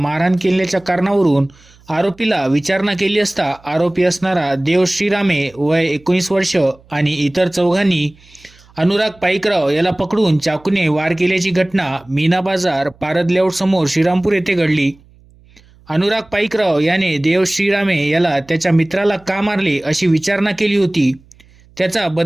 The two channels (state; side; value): noise; right; hum, 28 dB below the sound